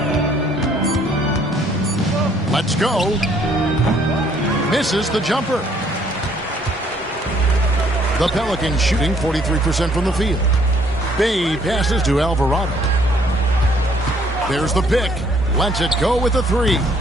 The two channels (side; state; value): both; normal; correlation 0.64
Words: Let's go. Misses the jumper. The Pelicans shooting 43% from the field. Bay passes to Alvarado. There's the pick. Lets it go with the 3.